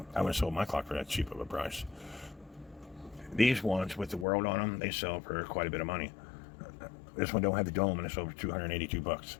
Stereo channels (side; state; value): right; drops out; at 4.2 s